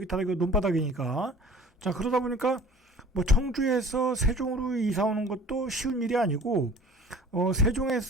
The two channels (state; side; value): normal; both; correlation 0.47